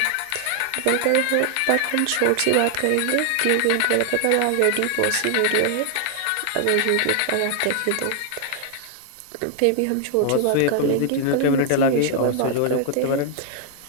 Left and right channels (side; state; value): both; different; correlation 0.00